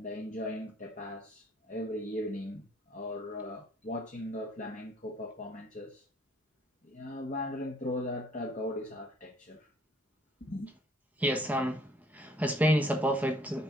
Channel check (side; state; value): both; normal; correlation 0.61